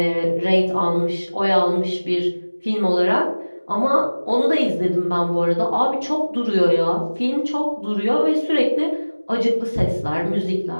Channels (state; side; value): inverted; both; correlation -1.00